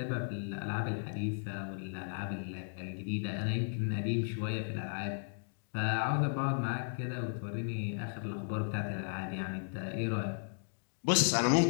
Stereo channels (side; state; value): right; silent; digital silence